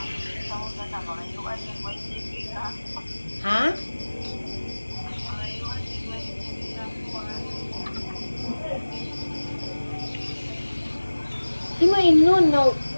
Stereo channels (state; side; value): inverted; both; correlation -1.00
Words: Ha? Di mo inon na